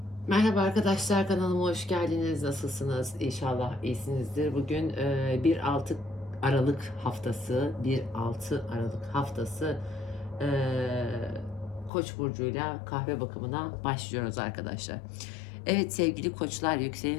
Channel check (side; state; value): right; drops out; at 11.9 s